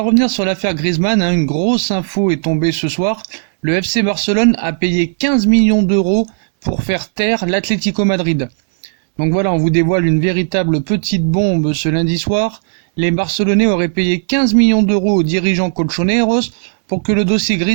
revenir sur l'affaire Griezmann, une grosse info est tombée ce soir. Le FC Barcelone a payé 15 millions d'euros pour faire taire l'Atlético Madrid. Donc voilà, on vous dévoile une véritable petite bombe ce lundi soir. Les Barcelonais auraient payé 15 millions d'euros aux dirigeants colchoneros pour que le dossier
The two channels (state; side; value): silent; left; digital silence